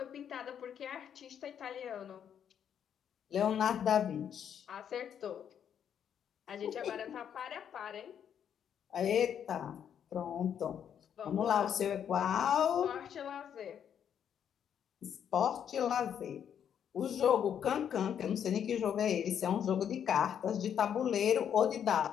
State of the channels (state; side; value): quieter; right; 8.7 dB